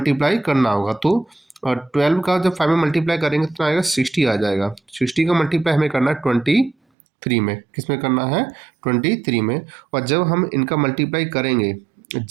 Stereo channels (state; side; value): drops out; left; at 6.8 s